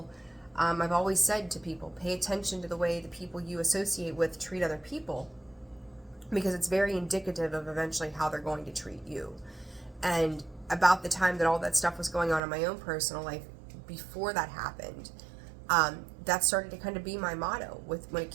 I've always said to people, pay attention to the way the people you associate with treat other people, because it's very indicative of eventually how they're going to treat you. And about the time that all that stuff was going on in my own personal life, before that happened, that started to kind of be my motto when it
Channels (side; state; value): left; drops out; at 12.4 s